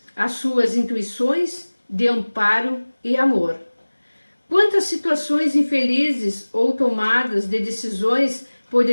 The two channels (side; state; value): both; inverted; correlation -1.00